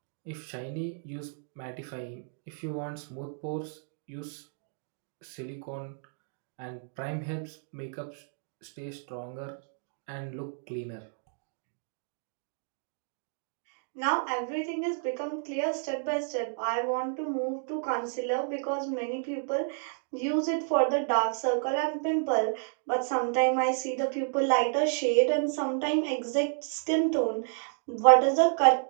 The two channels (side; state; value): left; silent; digital silence